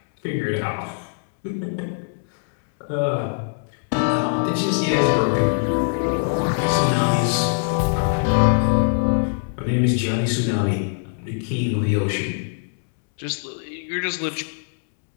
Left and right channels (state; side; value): silent; right; 64 dB below the other